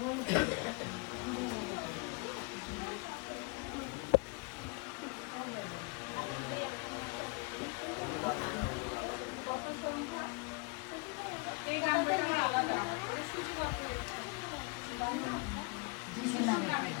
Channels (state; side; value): quieter; right; 31.3 dB